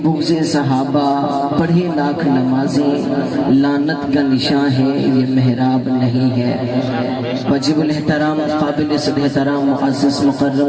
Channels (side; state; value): both; identical; correlation 1.00